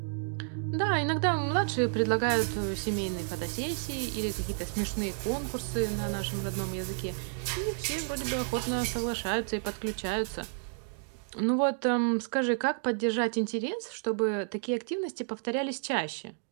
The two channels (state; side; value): silent; left; digital silence